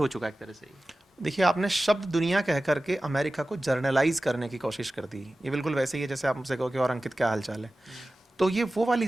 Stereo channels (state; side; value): normal; both; correlation 0.96